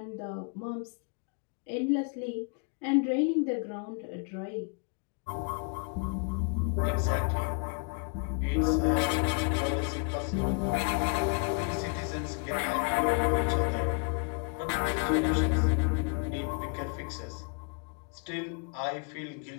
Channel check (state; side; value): quieter; right; 37.4 dB